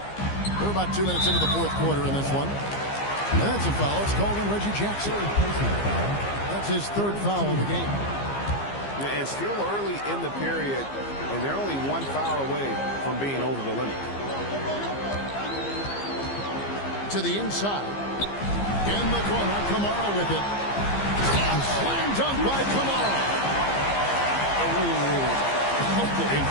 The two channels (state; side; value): late; right; 15 ms